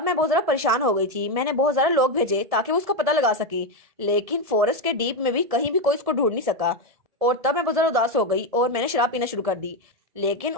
मैं बहुत ज्यादा परेशान हो गई थी। मैंने बहुत ज्यादा लोग भेजे ताकि वो उसका पता लगा सके, लेकिन फॉरेस्ट के डीप में भी कहीं भी कोई उसको ढूंढ नहीं सका। और तब मैं बहुत ज्यादा उदास हो गई और मैंने शराब पीना शुरू कर दी। लेकिन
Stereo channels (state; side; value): late; left; 1.7 ms